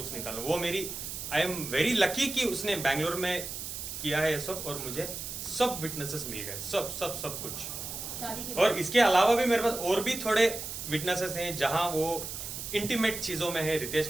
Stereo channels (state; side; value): noise; right; hiss, 7 dB below the sound